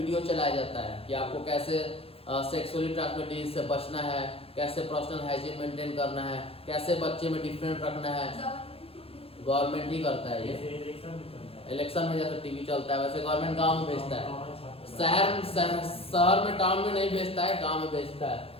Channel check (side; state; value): right; late; 0.28 ms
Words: चलाया जाता है कि आपको कैसे सेक्सुअली ट्रांसमिटेड डिजीज से बचना है, कैसे पर्सनल हाइजीन मेंटेन करना है, कैसे बच्चे में डिफरेंट रखना है। गवर्नमेंट ही करता है ये, इलेक्शन में जैसे टीवी चलता है वैसे गवर्नमेंट गांव में भेजता है, शहर में टाउन में नहीं भेजता है, गांव में भेजता है।